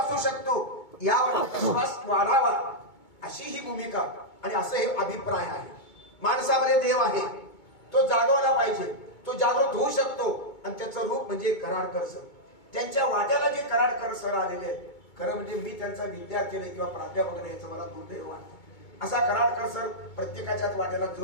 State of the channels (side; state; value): right; late; 2.2 ms